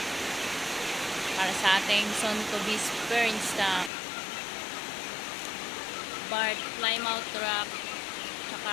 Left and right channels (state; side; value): drops out; right; at 3.9 s